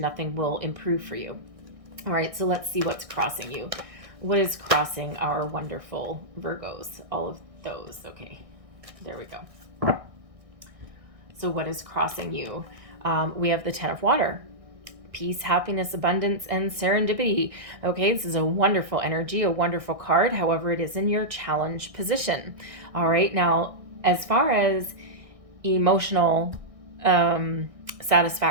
will improve for you. All right, so let's see what's crossing you. What is crossing our wonderful Virgos? All of those. Okay, there we go. So what is crossing you? We have the Ten of Water. Peace, happiness, abundance, and serendipity. Okay, this is a wonderful energy, a wonderful card. However, it is in your challenge position. All right, now, as far as emotional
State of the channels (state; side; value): late; left; 1.6 ms